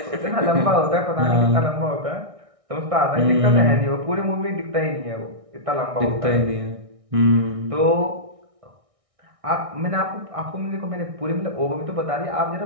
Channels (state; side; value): late; left; 1.6 ms